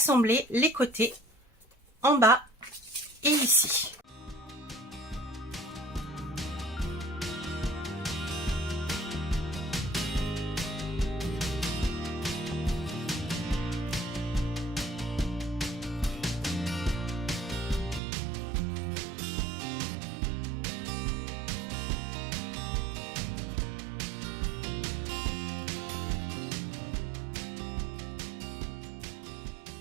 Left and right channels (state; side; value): drops out; left; at 18.0 s